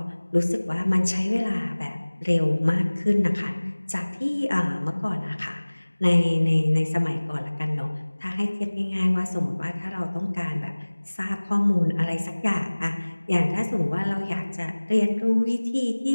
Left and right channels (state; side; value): inverted; both; correlation -1.00